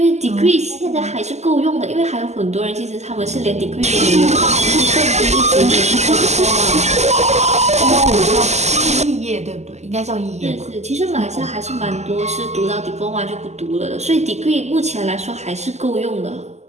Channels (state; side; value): late; left; 0.33 ms